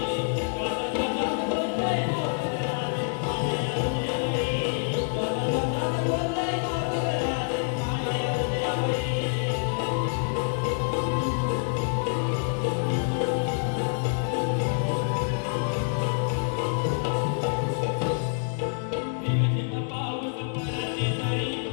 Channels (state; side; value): silent; right; digital silence